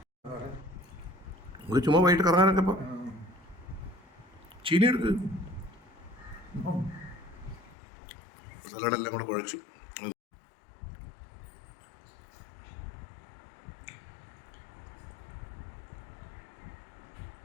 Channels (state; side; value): drops out; right; at 7.8 s